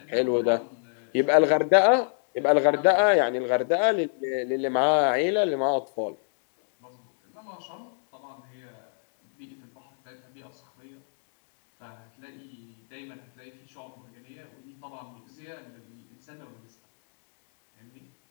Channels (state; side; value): silent; right; digital silence